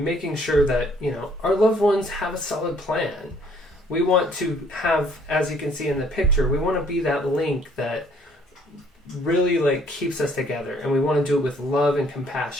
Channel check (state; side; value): normal; both; correlation 0.62